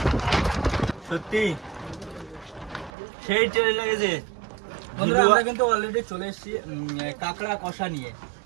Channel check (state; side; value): drops out; left; at 2.9 s